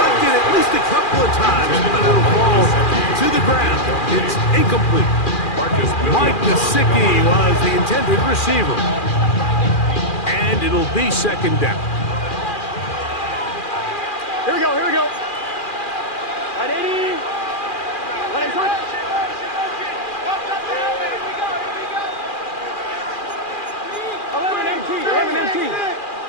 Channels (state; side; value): late; right; 2.4 ms